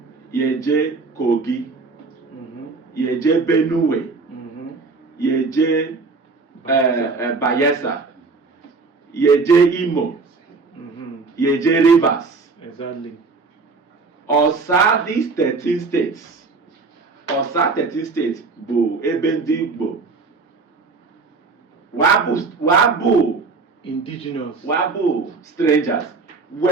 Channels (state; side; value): quieter; left; 4.1 dB